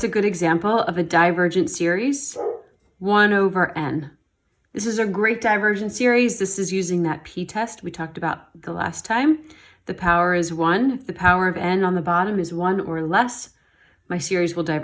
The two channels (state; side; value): identical; both; correlation 1.00